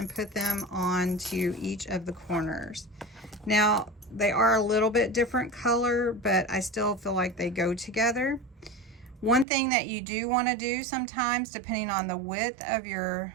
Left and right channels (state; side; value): drops out; left; at 9.5 s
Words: put them onto each of the corners. Now, they are a little bit different color, but I still feel like they go together. One thing that you do want to do sometimes, depending on the width of your